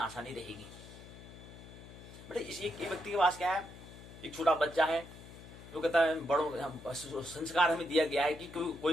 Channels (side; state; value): left; noise; hum, 16 dB below the sound